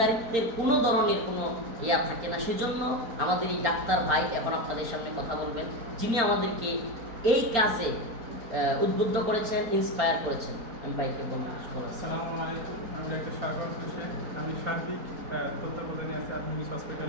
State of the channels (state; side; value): late; left; 4.3 ms